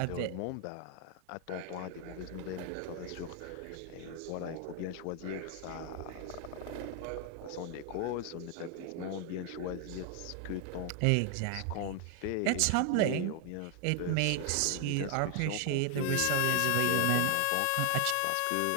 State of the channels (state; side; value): different; both; correlation 0.00